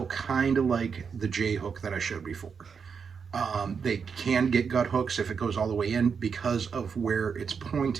kind of like the J hook that I showed before. They can get gut hooks if it goes all the way in because of where it's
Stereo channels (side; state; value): left; quieter; 6.1 dB